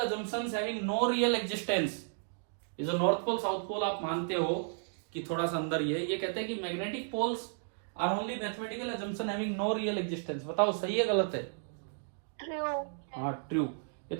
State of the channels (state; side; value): silent; left; digital silence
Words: having no real existence. ये जो नॉर्थ पोल साउथ पोल आप मानते हो कि थोड़ा सा अंदर ये कहते हैं कि magnetic poles are only mathematical assumption having no real existence. बताओ सही है गलत है? ट्रू। हाँ ट्रू। ये